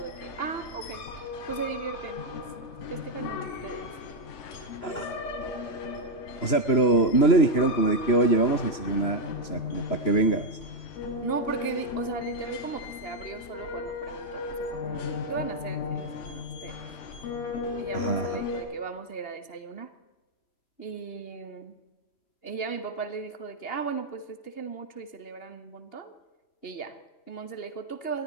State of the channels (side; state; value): right; late; 3.0 ms